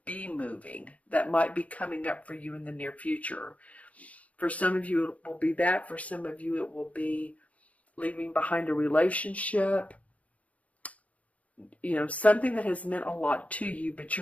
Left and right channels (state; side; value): late; right; 0.067 ms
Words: be moving. That might be coming up for you in the near future. For some of you, it will be that. For some of you, it will be leaving behind a relationship, something that has meant a lot to you, but